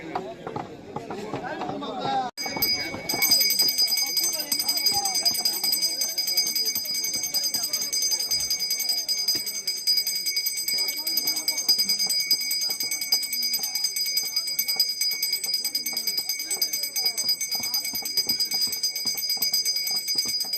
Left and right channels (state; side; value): identical; both; correlation 1.00